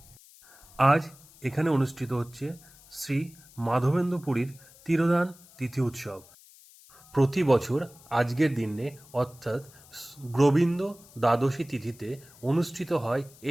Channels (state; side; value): noise; left; hiss, 24 dB below the sound